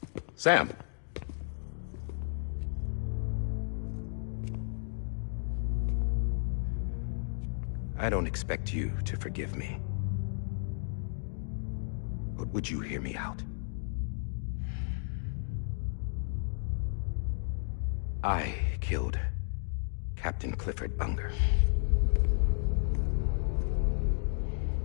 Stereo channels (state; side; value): silent; right; digital silence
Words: Sam. I don't expect you to forgive me. But would you hear me out? I killed Captain Clifford Unger.